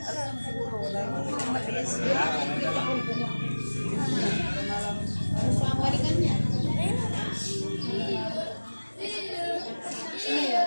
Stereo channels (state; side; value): inverted; both; correlation -1.00